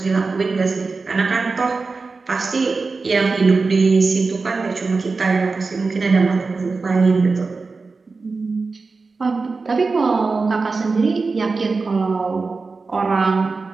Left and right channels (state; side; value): quieter; left; 4.1 dB